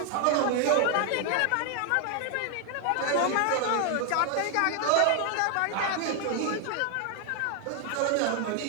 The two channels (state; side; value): different; both; correlation 0.01